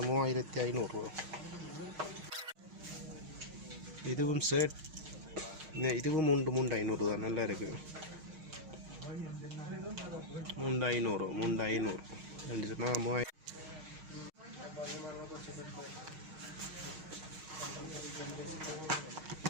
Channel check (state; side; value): late; left; 6.4 ms